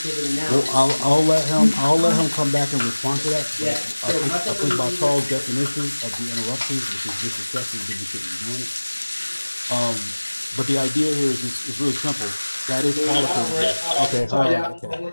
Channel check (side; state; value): both; inverted; correlation -1.00